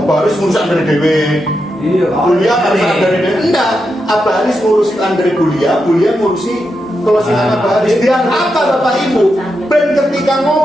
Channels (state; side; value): normal; both; correlation 0.86